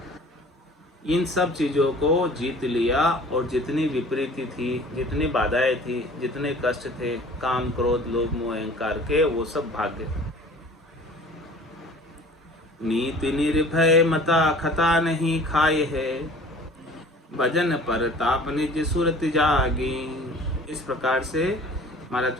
इन सब चीज़ों को जीत लिया और जितनी विपरीति थी, जितनी बाधाएं थी, जितने कष्ट थे, काम क्रोध लोभ मोह अहंकार के, वो सब भाग गए। नीति निर्भय मता खता नहीं खाए है, भजन पर ताप निज सुरत जागी। इस प्रकार से महाराज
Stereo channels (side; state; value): both; normal; correlation 0.47